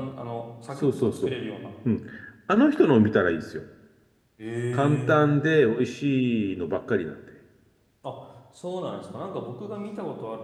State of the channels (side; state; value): both; identical; correlation 1.00